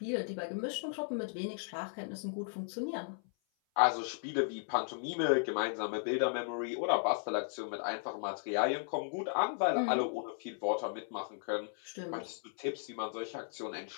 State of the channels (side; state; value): right; silent; 54 dB below the other